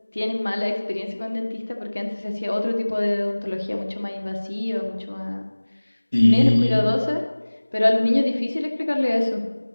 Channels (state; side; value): inverted; both; correlation -1.00